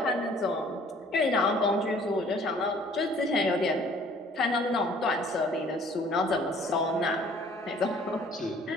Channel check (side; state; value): both; normal; correlation 0.55